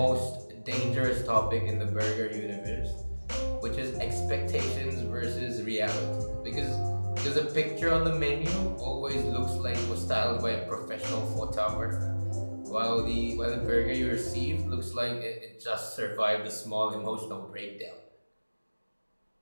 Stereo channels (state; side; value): inverted; both; correlation -1.00